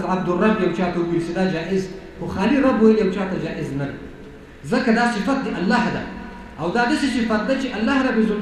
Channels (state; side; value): identical; both; correlation 1.00